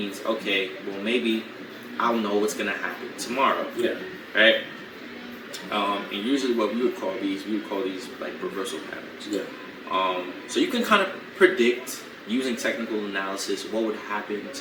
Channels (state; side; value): identical; both; correlation 1.00